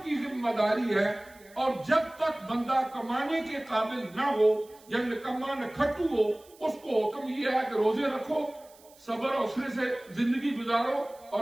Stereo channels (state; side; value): noise; right; hiss, 26 dB below the sound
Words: کی ذمہ داری ہے، اور جب تک بندہ کمانے کے قابل نہ ہو یا نکما نہ کھٹو ہو، اس کو حکم یہ ہے کہ روزے رکھو، صبر حوصلے سے زندگی گزارو،